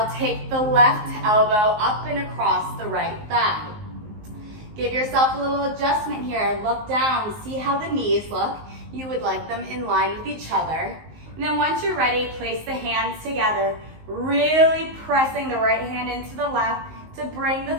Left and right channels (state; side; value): late; left; 19 ms